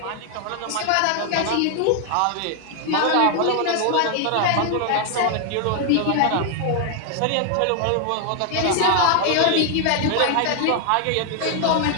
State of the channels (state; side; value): different; both; correlation 0.00